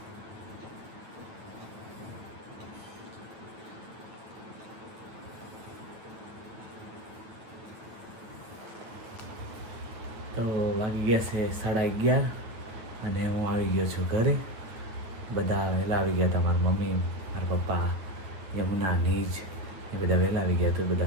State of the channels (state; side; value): late; left; 9.0 ms